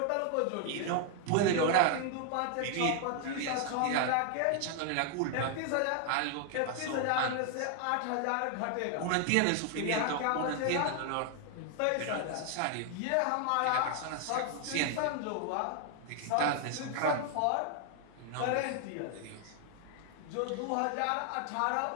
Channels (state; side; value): different; both; correlation 0.00